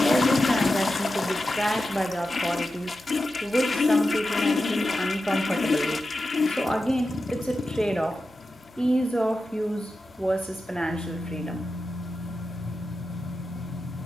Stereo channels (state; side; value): noise; left; hum, 30 dB below the sound